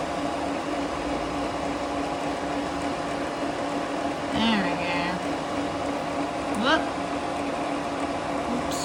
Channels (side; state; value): both; identical; correlation 1.00